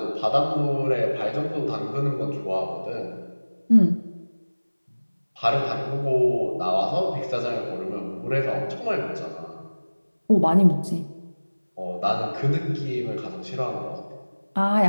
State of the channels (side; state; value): both; inverted; correlation -1.00